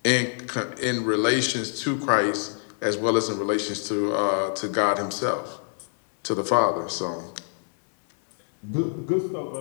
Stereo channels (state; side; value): silent; right; digital silence